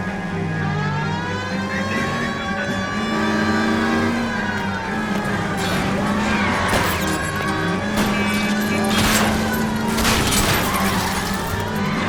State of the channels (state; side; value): identical; both; correlation 1.00